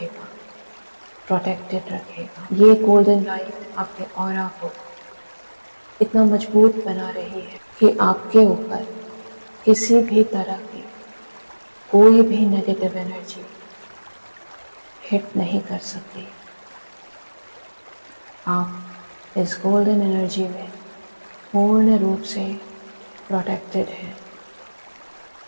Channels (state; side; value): inverted; both; correlation -1.00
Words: प्रोटेक्टेड रखेगा। ये गोल्डन लाइट आपके ऑरा को इतना मजबूत बना रही है कि आपके ऊपर किसी भी तरह की कोई भी नेगेटिव एनर्जी हिट नहीं कर सकती। आप इस गोल्डन एनर्जी में पूर्ण रूप से प्रोटेक्टेड है।